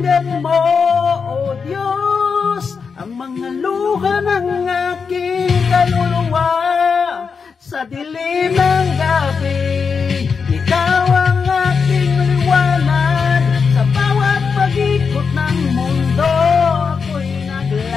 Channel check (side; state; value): right; quieter; 5.6 dB